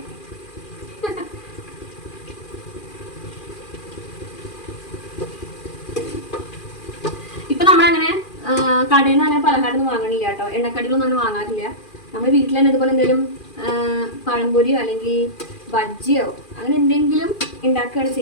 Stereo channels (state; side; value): late; right; 2.4 ms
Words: ഇപ്പൊ നമ്മളങ്ങനെ കടയിൽ നിന്ന് അങ്ങനെ പലഹാരമൊന്നും വാങ്ങണില്ല കേട്ടോ. എണ്ണക്കടികളൊന്നും അങ്ങനെ വാങ്ങാറില്ല. നമ്മൾ വീട്ടിൽ തന്നെ ഇതുപോലെ എന്തെങ്കിലും പഴംപൊരിയോ അല്ലെങ്കിൽ ബജ്ജിയോ അങ്ങനെ എന്തെങ്കിലും ഉണ്ടാക്കുകയാണ്